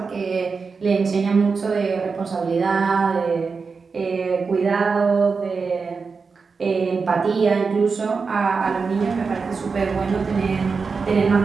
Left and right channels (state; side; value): quieter; left; 4.9 dB